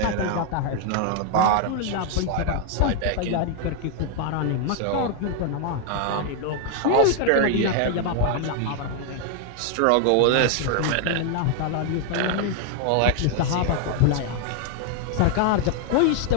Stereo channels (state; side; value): different; both; correlation 0.00